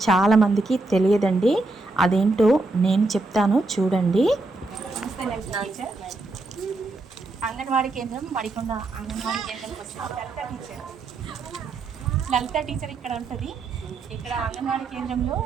చాలామందికి తెలియదండి. అదేంటో నేను చెప్తాను చూడండి. అంగన్వాడీ కేంద్రం మడికొండ అంగన్వాడీ కేంద్రంకి వచ్చిన లలిత టీచర్ ఇక్కడ ఉంటుంది. ఇక్కడ అంగన్వాడీ కేంద్రంలో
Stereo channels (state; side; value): quieter; left; 3.2 dB